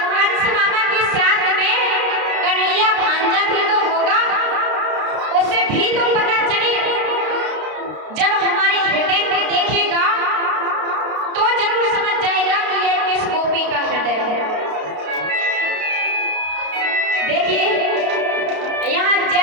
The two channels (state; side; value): late; left; 32 ms